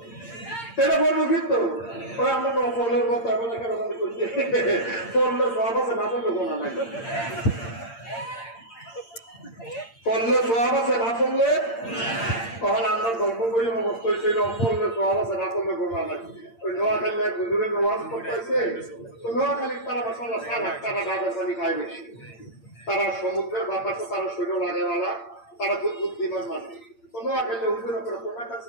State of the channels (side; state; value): right; late; 8.7 ms